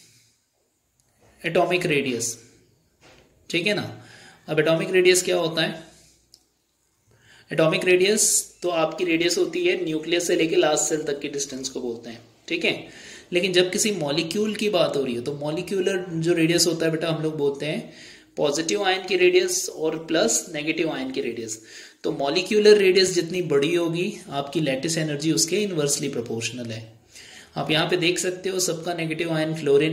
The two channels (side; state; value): both; identical; correlation 1.00